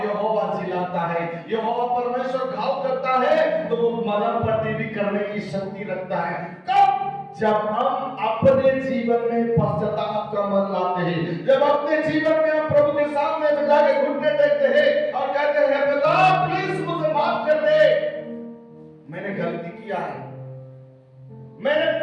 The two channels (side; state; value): both; identical; correlation 1.00